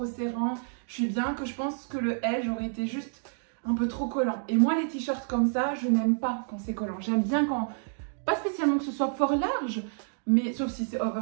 serrants. Je suis bien que je pense que le L j'aurais été juste un peu trop collant. Et moi les t-shirts comme ça, je n'aime pas quand c'est collant. J'aime bien quand, pas spécialement que ce soit fort large, mais sauf si c'est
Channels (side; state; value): left; silent; digital silence